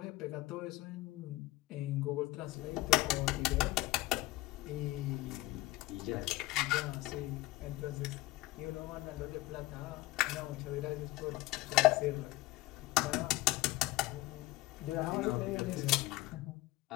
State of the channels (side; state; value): right; quieter; 18.3 dB